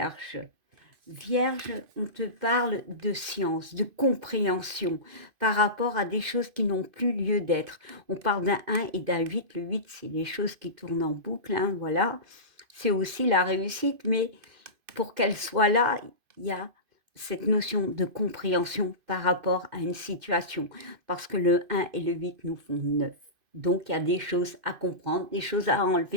Vierge, on te parle de science, de compréhension par rapport à des choses qui n'ont plus lieu d'être. On parle d'un 1 et d'un 8. Le 8, c'est les choses qui tournent en boucle, hein, voilà. C'est aussi la réussite, mais pour qu'elle soit là, il y a cette notion de compréhension par rapport à une situation. Parce que le 1 et le 8 nous font 9. Donc, il y a des choses à comprendre, des choses à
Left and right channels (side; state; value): left; late; 2.5 ms